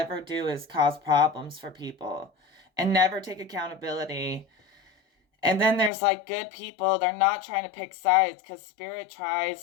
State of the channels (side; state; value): right; drops out; at 5.9 s